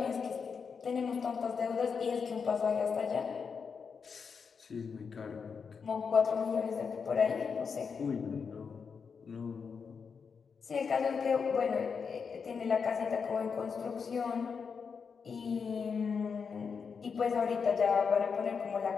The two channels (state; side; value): quieter; right; 5.9 dB